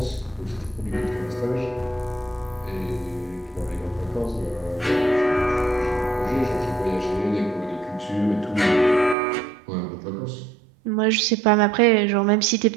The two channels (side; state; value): left; drops out; at 9.2 s